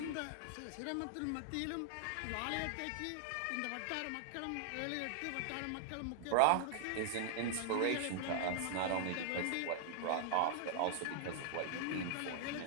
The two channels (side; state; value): both; different; correlation -0.01